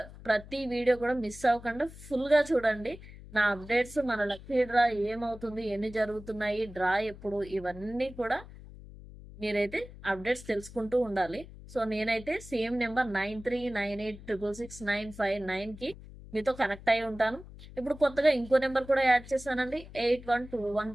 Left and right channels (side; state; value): left; noise; hum, 17 dB below the sound